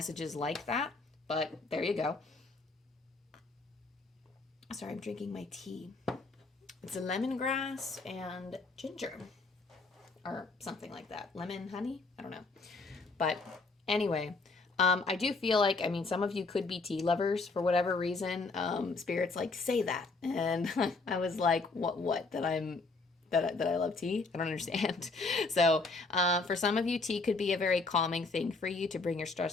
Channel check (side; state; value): right; quieter; 3.7 dB